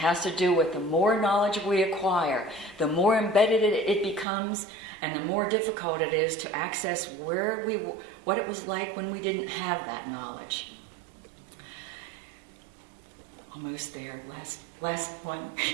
to do with the more knowledge we acquire, the more embedded it becomes, and the more difficult it is to access what it was like when we didn't have that knowledge. Almost there, last one.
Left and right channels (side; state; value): left; drops out; at 4.2 s